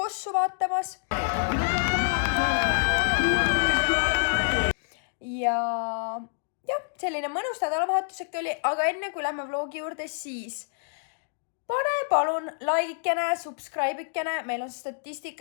vaatamas. Ja selline mõnus nädalavahetus äkki oli, aga enne kui lähme vlogi juurde, siis pane palun laikikene, subscribe'ikene. Meil on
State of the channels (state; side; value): silent; right; digital silence